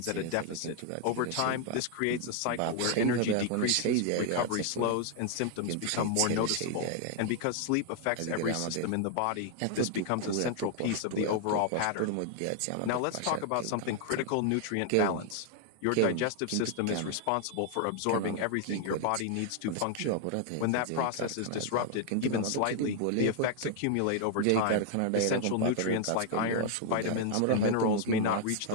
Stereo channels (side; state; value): both; different; correlation 0.00